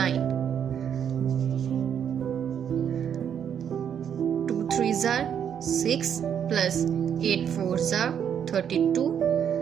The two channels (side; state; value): left; quieter; 8.5 dB